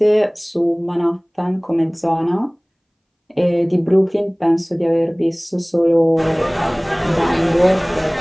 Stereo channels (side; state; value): both; identical; correlation 1.00